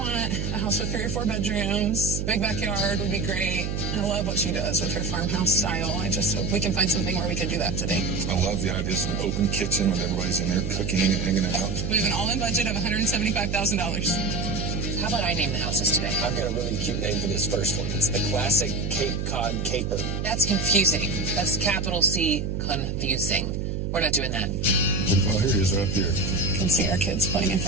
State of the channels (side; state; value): right; noise; hum, 2 dB below the sound